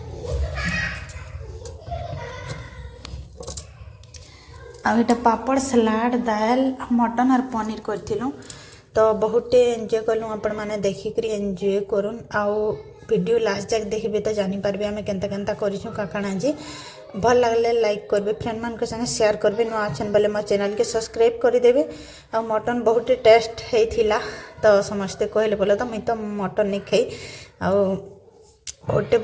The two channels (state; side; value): identical; both; correlation 1.00